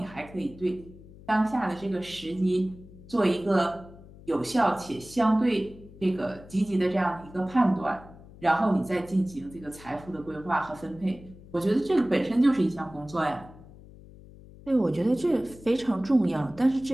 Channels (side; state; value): left; noise; hum, 20 dB below the sound